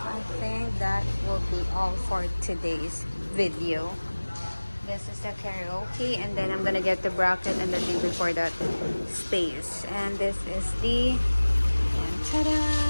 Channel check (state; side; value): inverted; both; correlation -1.00